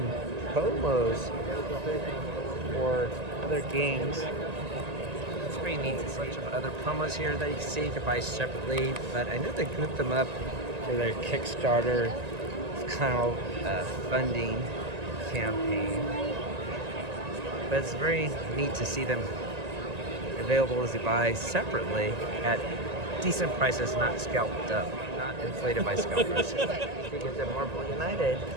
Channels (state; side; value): late; left; 1.9 ms